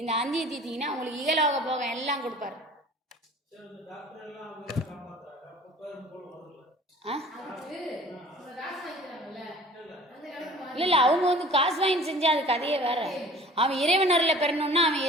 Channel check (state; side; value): normal; both; correlation 0.46